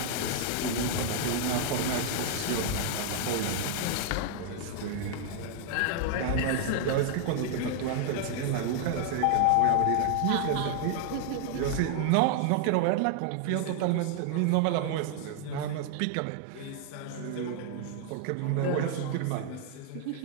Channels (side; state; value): both; different; correlation 0.00